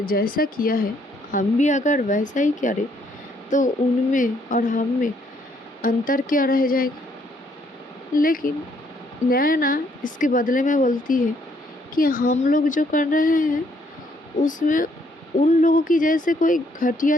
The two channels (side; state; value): both; normal; correlation 0.69